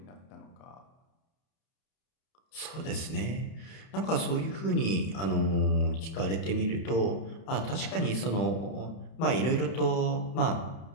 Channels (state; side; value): late; right; 31 ms